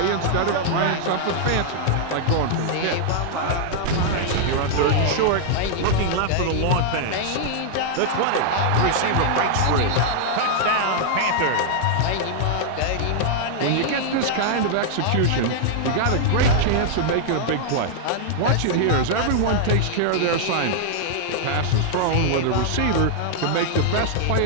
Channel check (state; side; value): different; both; correlation -0.01